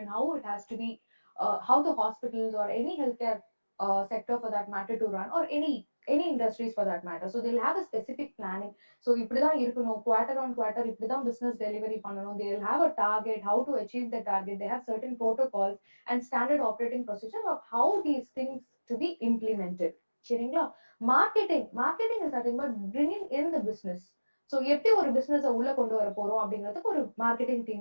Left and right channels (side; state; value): both; inverted; correlation -1.00